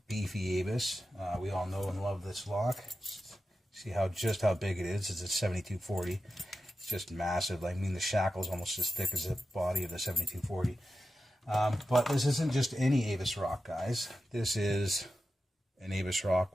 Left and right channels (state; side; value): normal; both; correlation 0.92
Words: beefy Avis. We all know and love this lock. See just how big it is. It's a 7240. It's just massive. I mean, the shackle's almost as thick as the body of the 7240. But this isn't just any Avis rock, guys. This is an Avis